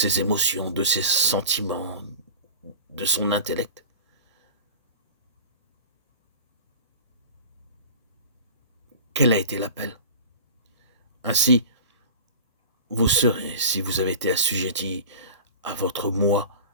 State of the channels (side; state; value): both; inverted; correlation -0.36